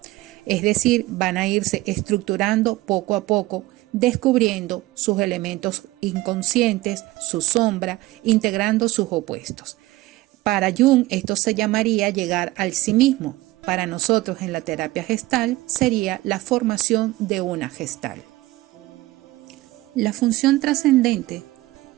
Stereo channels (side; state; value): left; quieter; 18.7 dB